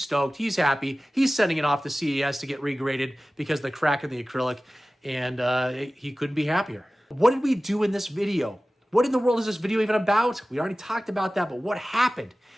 He's happy. He's sending it off to CES to get regraded because of the crack in the acrylic, and he couldn't be happier. What did we do in this video? What in the world is this video even about? We already talked about that, but what happened?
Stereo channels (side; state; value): both; normal; correlation 0.97